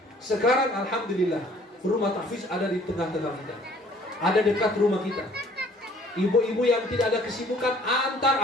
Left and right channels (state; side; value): normal; both; correlation 0.56